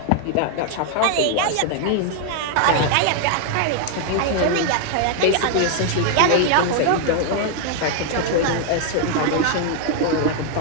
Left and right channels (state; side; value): different; both; correlation 0.00